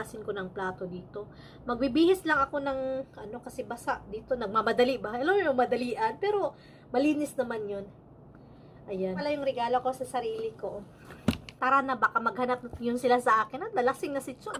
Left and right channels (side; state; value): both; identical; correlation 1.00